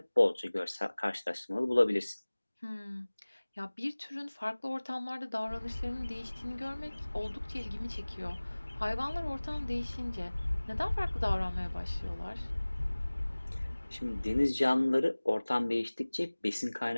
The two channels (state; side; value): inverted; both; correlation -1.00